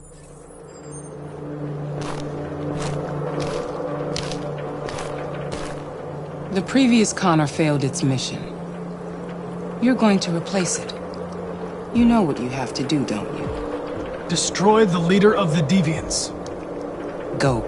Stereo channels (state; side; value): identical; both; correlation 1.00